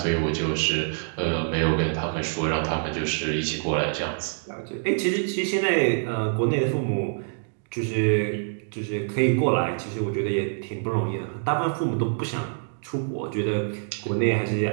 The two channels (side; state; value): left; silent; digital silence